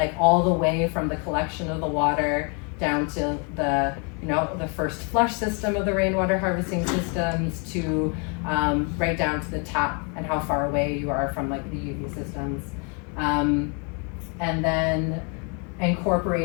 all the way from the collection of the water down to the first flush system of the rainwater harvesting systems to right down to the tap and how far away you are from like the UV systems. And then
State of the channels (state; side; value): quieter; right; 36.2 dB